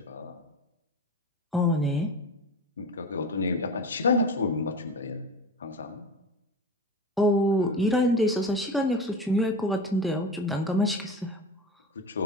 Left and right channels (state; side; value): normal; both; correlation 0.30